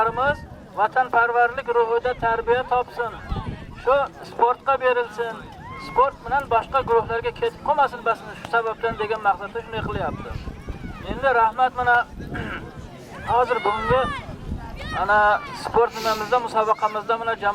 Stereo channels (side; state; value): both; identical; correlation 1.00